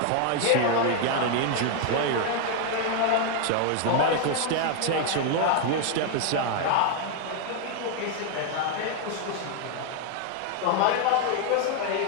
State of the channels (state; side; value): different; both; correlation 0.01